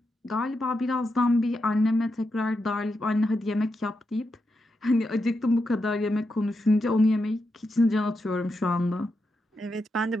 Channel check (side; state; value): both; normal; correlation 0.86